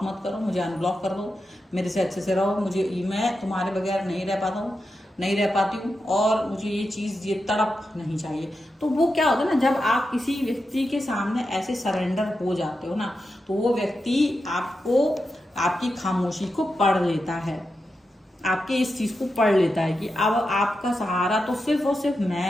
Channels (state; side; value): normal; both; correlation 0.88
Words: मत करो, मुझे अनब्लॉक कर दो, मेरे से अच्छे से रहो, मुझे, मैं तुम्हारे बगैर नहीं रह पाता हूँ, नहीं रह पाती हूँ, और मुझे ये चीज, ये तड़प नहीं चाहिए। तो वो क्या होता है ना, जब आप किसी व्यक्ति के सामने ऐसे सरेंडर हो जाते हो ना, तो वो व्यक्ति आपको, आपकी खामोशी को पढ़ लेता है, आपके इस चीज को पढ़ लेता है कि अब आपका सहारा तो सिर्फ और सिर्फ